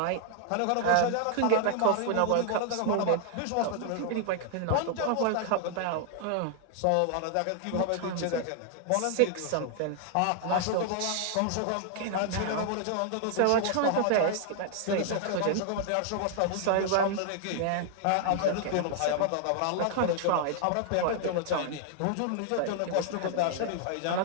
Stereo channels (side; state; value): both; different; correlation 0.00